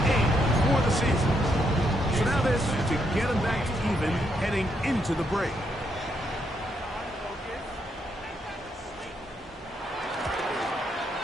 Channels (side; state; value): both; normal; correlation 0.77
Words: 8 for the season. So now this to get him back to even heading into the break.